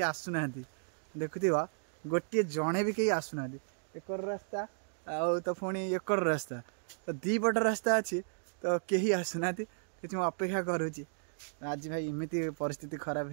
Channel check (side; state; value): left; silent; digital silence